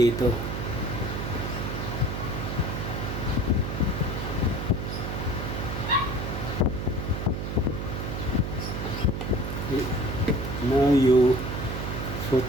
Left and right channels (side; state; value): right; noise; hum, 4 dB below the sound